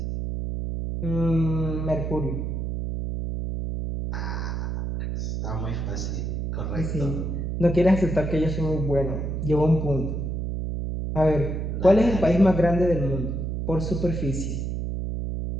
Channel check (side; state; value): right; noise; hum, 2 dB below the sound